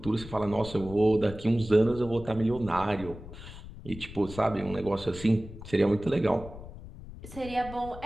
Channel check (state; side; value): noise; left; rumble, 14 dB below the sound